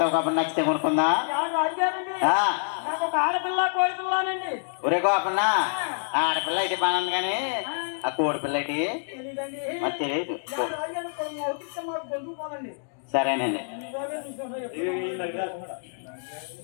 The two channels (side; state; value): right; silent; digital silence